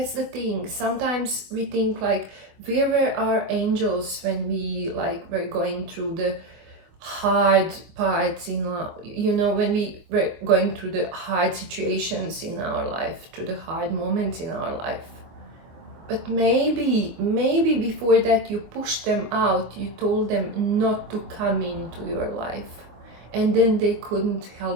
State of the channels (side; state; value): left; late; 24 ms